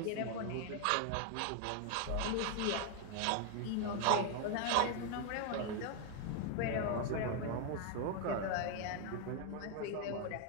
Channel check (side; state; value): both; different; correlation 0.00